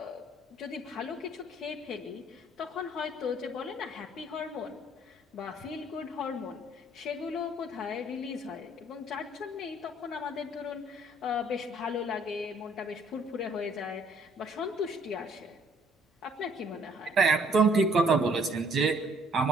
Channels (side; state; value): both; normal; correlation 0.62